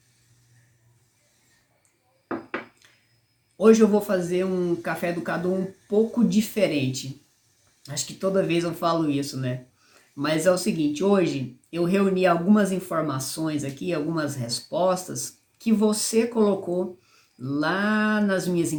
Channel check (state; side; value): identical; both; correlation 1.00